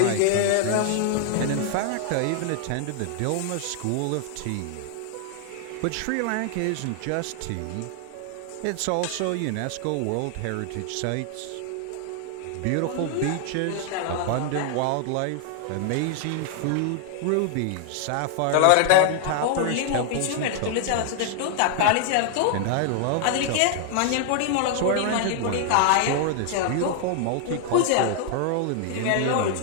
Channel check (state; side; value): different; both; correlation 0.00